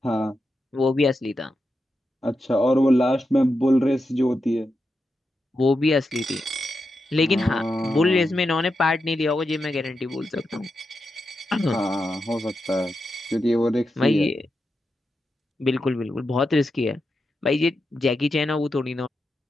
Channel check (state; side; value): normal; both; correlation 0.88